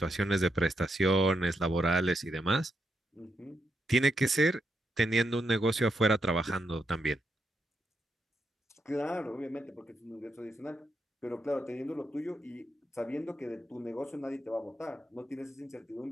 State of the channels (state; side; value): normal; both; correlation 0.82